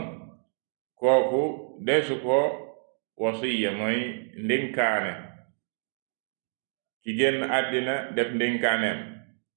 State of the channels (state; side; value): silent; left; digital silence